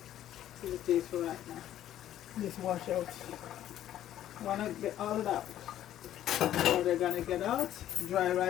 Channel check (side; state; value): right; quieter; 12.0 dB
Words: tastes for right now. Just wash out. Wanna get all of that. So they're gonna get out, dry